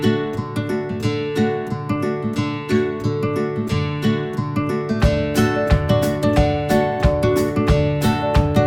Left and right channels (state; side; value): identical; both; correlation 1.00